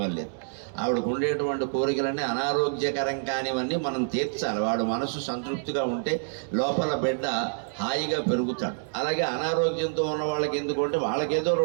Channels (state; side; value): silent; left; digital silence